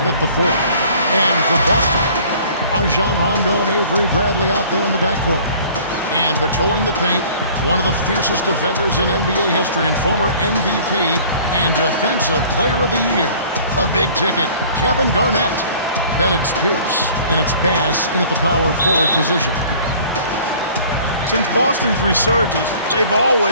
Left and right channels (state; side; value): inverted; both; correlation -0.50